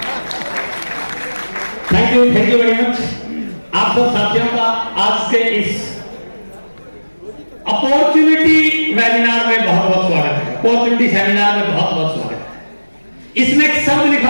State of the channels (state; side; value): inverted; both; correlation -1.00